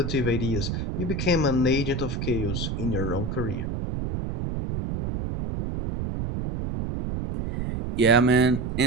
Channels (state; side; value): noise; right; rumble, 3 dB below the sound